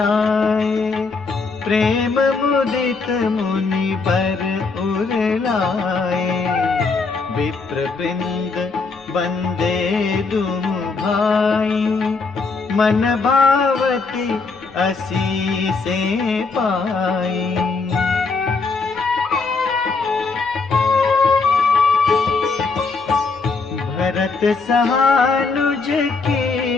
प्रेम मुदित मुनि पर उरलाए। विप्र वृंद बंदे दुम भाई, मन भावती असीसे पाई। भरत सहानुज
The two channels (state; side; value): quieter; right; 4.3 dB